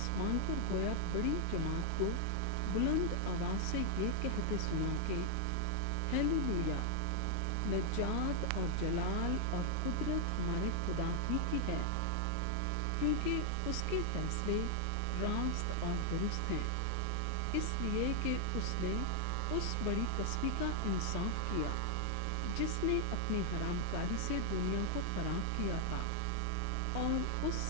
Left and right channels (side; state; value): both; different; correlation 0.00